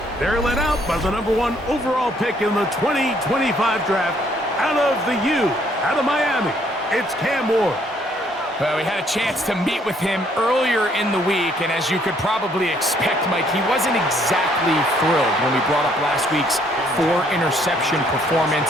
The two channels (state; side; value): normal; both; correlation 0.66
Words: They're led out by the #1 overall pick in the 2025 draft out of the U, out of Miami. It's Cam Ward. Well, we had a chance to meet with him earlier in the week, and as you could probably expect, Mike, he wasn't exactly thrilled when we brought up last week's 4-interception